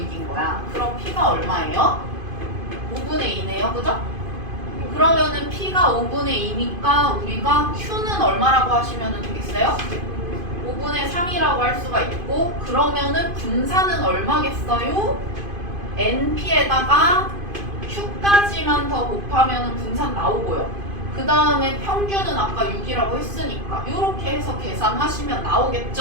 거야. 그럼 P가 얼마예요? 5분의 2네요. 그죠? 그러면은 P가 5분의 2니까 우리가 Q는 얼마라고 하시면 되겠어요? 5분의 3이라고 할 수가 있고, 그러면은 분산은 얼마겠어요? NP에다가 Q까지만 더 곱하면 분산 나오고요. 그 다음에 평균은 아까 6이라고 했으니까 이렇게 해서 계산하시면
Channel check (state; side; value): late; left; 2.5 ms